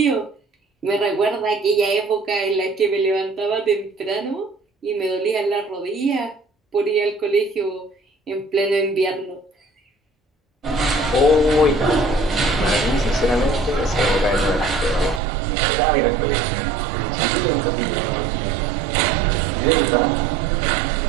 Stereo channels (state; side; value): drops out; left; at 15.2 s